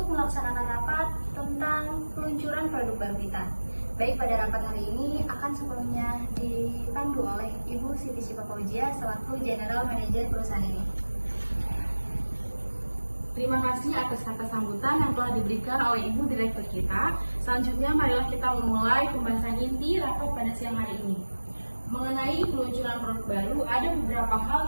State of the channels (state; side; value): inverted; both; correlation -1.00